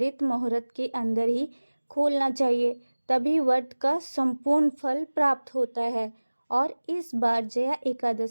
मुहूर्त के अंदर ही खोलना चाहिए, तभी व्रत का संपूर्ण फल प्राप्त होता है। और इस बार जया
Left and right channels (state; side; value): inverted; both; correlation -1.00